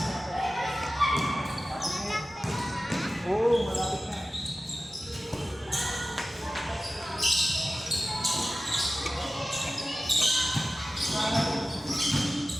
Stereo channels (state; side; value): normal; both; correlation 0.95